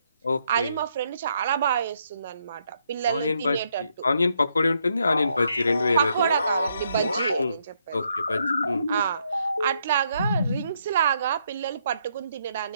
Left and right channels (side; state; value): both; inverted; correlation -0.75